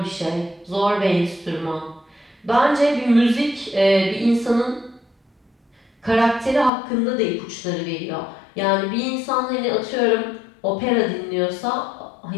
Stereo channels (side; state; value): right; drops out; at 6.7 s